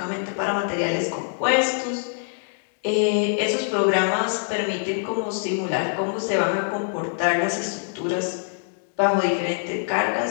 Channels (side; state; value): right; silent; digital silence